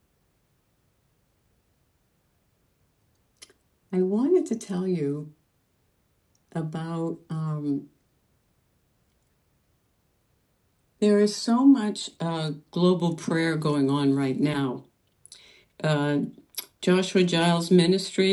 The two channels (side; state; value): both; identical; correlation 1.00